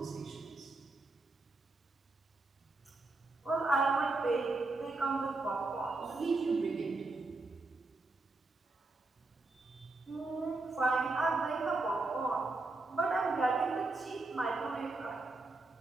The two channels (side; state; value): left; quieter; 3.3 dB